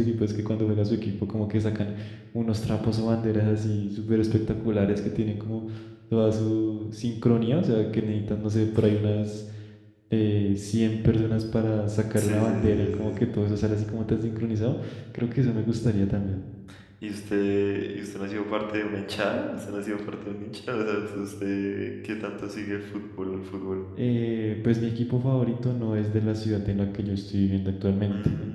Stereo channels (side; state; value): both; identical; correlation 1.00